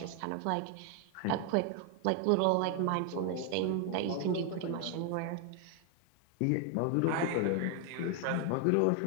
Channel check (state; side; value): different; both; correlation 0.00